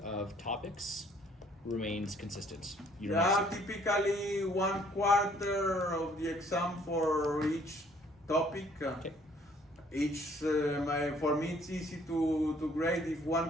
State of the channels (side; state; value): both; normal; correlation 0.61